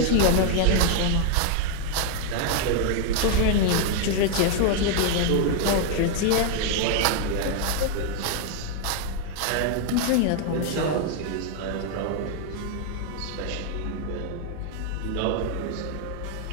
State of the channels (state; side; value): different; both; correlation 0.00